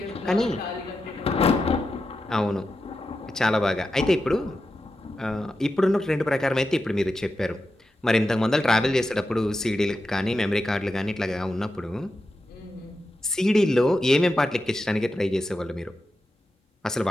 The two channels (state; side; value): normal; both; correlation 0.90